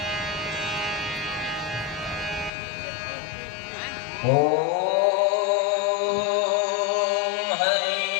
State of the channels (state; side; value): drops out; right; at 2.5 s